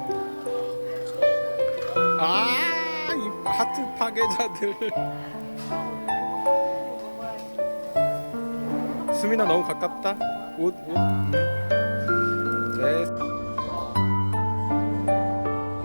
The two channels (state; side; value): inverted; both; correlation -1.00